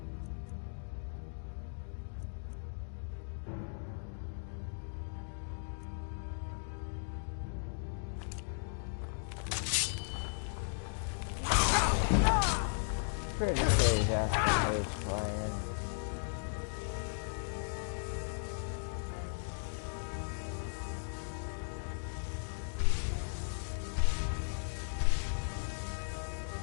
pretty sure he's asking who's playing.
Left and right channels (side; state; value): right; silent; digital silence